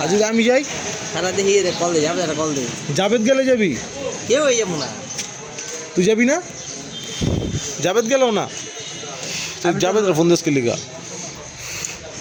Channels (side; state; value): both; identical; correlation 1.00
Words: আর যদি আমি যাই সারা দেখি রে কল দে যাবে একটা কল দে জাবেদ গেলে যাবি কেউ হয়ে যাব না তুই যাবি না জাবেদ গেলেও না তুই জাবেদ ফোন দেশ লিগা